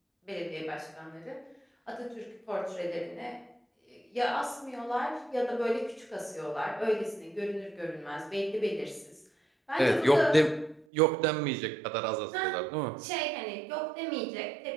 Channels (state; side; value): drops out; left; at 10.9 s